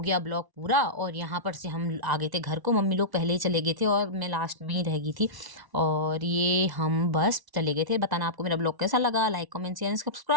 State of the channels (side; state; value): left; late; 1.1 ms